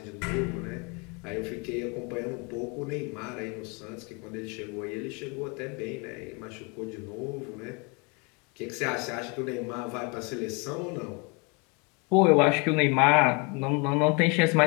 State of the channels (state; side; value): quieter; right; 31.3 dB